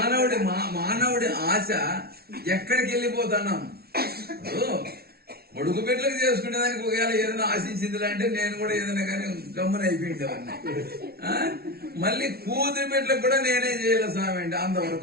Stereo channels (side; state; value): left; late; 0.45 ms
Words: మానవుడి ఆశ ఎక్కడికి వెళ్ళిపోతున్నాం? కొడుకు బిడ్డలకు చేసుకునే దానికి ఒకవేళ ఏదైనా ఆశించింది అంటే నేను కూడా ఏదైనా కానీ గమ్మున అయిపోయిండేవాడిని. మళ్ళీ కూతురు బిడ్డలకు కూడా నేనే చేయాలి స్వామి అంటే,